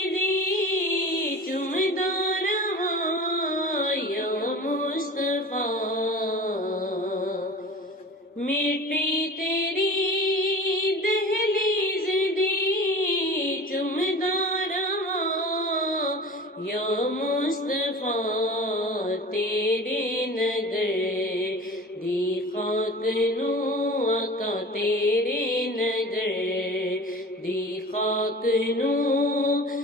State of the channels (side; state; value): both; normal; correlation 0.38